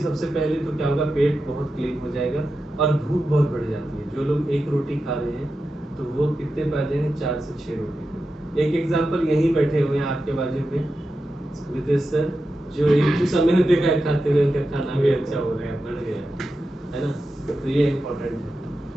पहले तो क्या होगा, पेट बहुत क्लीन हो जाएगा और भूख बहुत बढ़ जाती है। जो लोग एक रोटी खा रहे हैं तो वो कितने पा जाएंगे, 4 से 6 रोटी। एक एग्जांपल यहीं बैठे हुए हैं आपके बाजू में विदेश सर, जो एक समय ने देखा है खाते हुए, उनका खाना भी अच्छा हो रहा है, बढ़ गया है ना, तो ये इम्पोर्टेंट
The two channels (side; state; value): both; normal; correlation 0.91